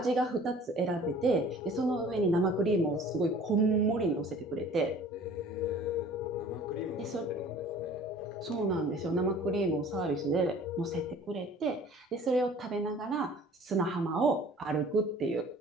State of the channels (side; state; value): both; normal; correlation 0.49